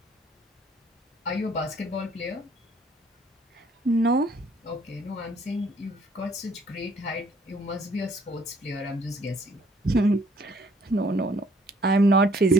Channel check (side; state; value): both; normal; correlation 0.61